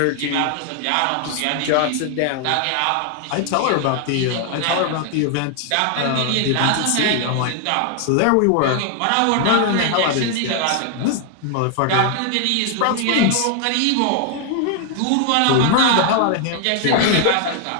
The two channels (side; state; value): both; different; correlation 0.00